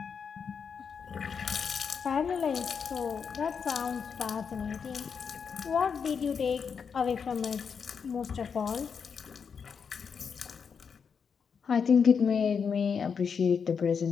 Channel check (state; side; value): quieter; right; 6.3 dB